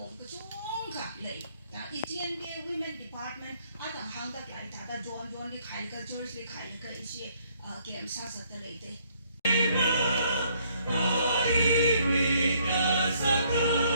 katung ka lay ETNBA Women Department atang hangdak lai tada John li khai ka George li khai ka isi game sa sa ta lai de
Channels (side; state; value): both; inverted; correlation -0.67